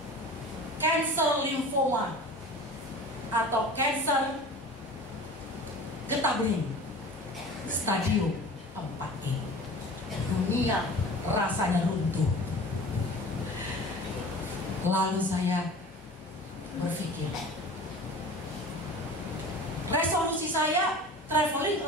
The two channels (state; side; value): normal; both; correlation 0.39